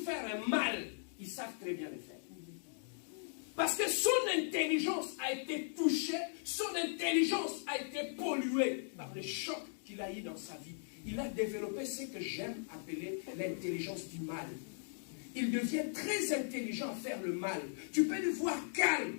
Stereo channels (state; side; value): silent; right; digital silence